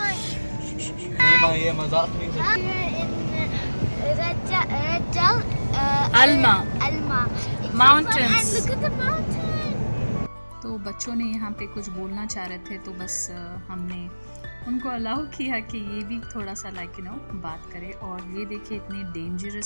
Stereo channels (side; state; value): both; inverted; correlation -1.00